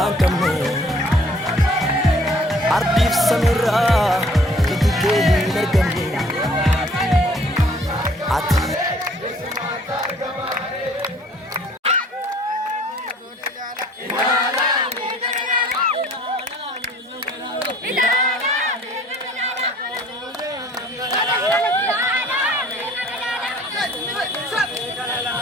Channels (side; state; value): both; normal; correlation 0.56